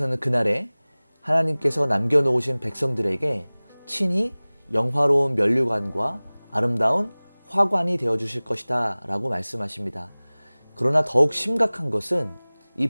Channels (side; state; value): both; inverted; correlation -1.00